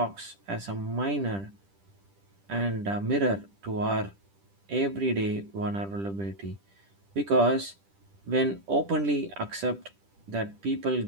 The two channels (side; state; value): left; late; 10 ms